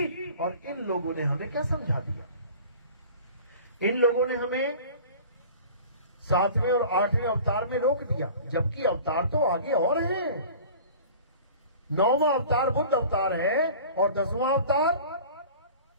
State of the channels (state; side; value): inverted; both; correlation -0.42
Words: और इन लोगों ने हमें क्या समझा दिया। इन लोगों ने हमें 7वें और 8वें अवतार में रोक दिया, जबकि अवतार तो आगे और हैं। 9वां अवतार बुद्ध अवतार है, और 10वां अवतार